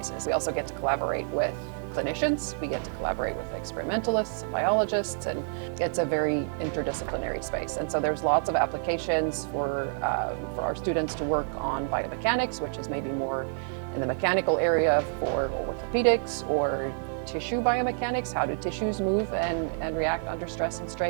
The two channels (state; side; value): silent; left; 59 dB below the other